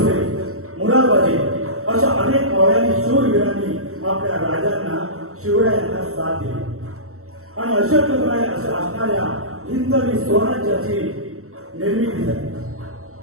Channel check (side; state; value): left; late; 0.63 ms